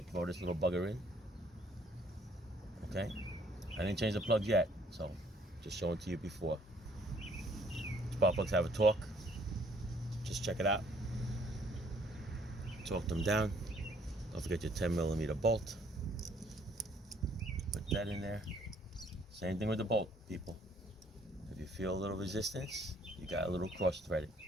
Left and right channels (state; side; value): normal; both; correlation 0.63